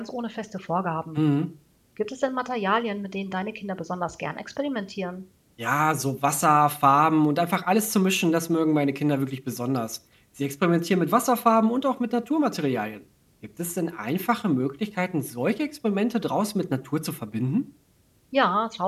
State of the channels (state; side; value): identical; both; correlation 1.00